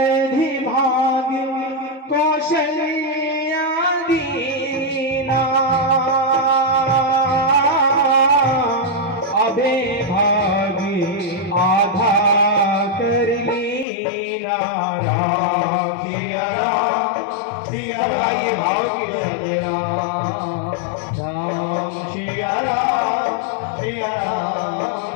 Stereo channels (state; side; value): drops out; right; at 13.9 s